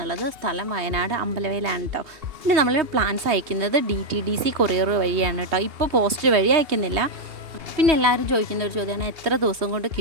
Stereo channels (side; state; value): left; late; 2.8 ms